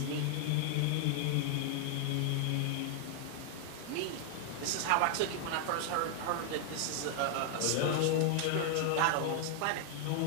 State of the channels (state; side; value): different; both; correlation 0.00